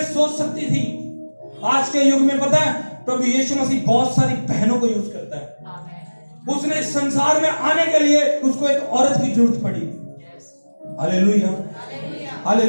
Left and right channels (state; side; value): inverted; both; correlation -1.00